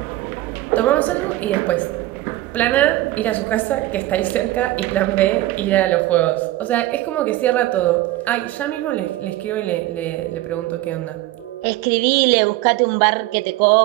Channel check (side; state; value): left; quieter; 16.7 dB